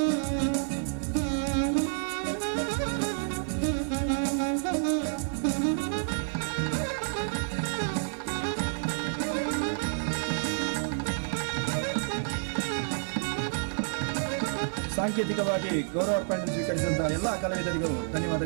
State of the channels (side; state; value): left; silent; digital silence